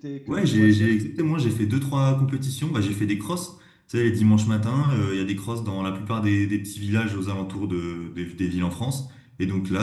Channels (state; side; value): identical; both; correlation 1.00